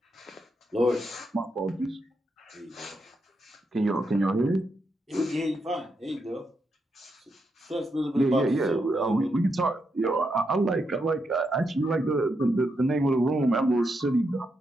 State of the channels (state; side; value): normal; both; correlation 0.82